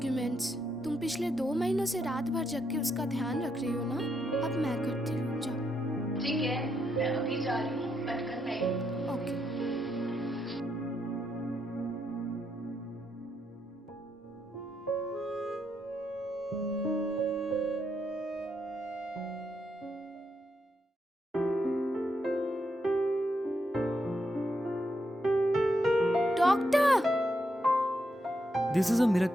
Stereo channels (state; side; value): normal; both; correlation 0.80